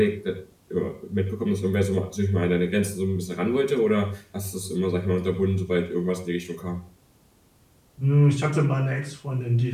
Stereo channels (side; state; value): both; identical; correlation 1.00